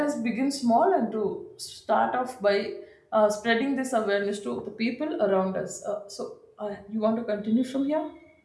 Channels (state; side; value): identical; both; correlation 1.00